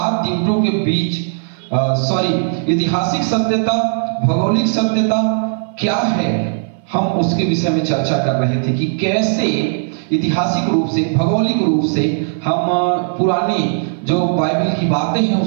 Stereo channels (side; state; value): left; silent; 59 dB below the other